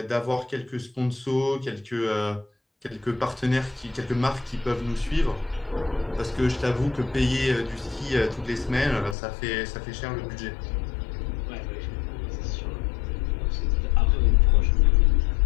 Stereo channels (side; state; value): right; drops out; at 9.2 s